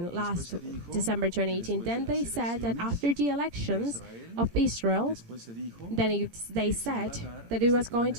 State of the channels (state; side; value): late; left; 18 ms